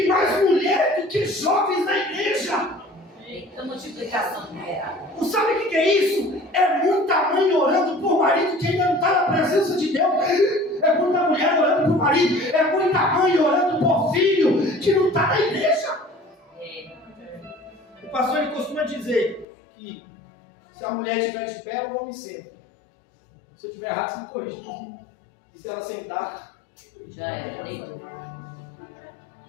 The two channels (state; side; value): drops out; right; at 19.5 s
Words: mais mulher do que jovens na igreja. Eita multiplicação numerável. Não sabe o que é isso? É muita mãe orando por marido que ainda não está na presença de Deus. É muita mulher orando por marido. É muita mãe orando por filho que não está na igreja. O pastor ele costuma dizer que se a mulher estiver de pé, o homem senta. Se eu estiver errado, você me corrige. E se ela sentar, Já era, deitou.